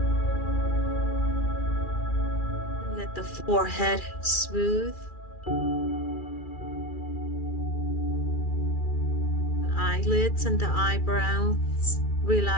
And let the forehead smooth. The eyelids and the eyebrows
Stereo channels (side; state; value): right; late; 2.4 ms